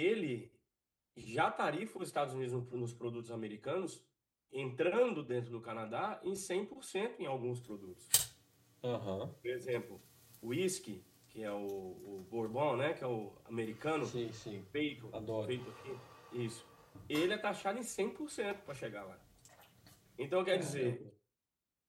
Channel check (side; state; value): both; identical; correlation 1.00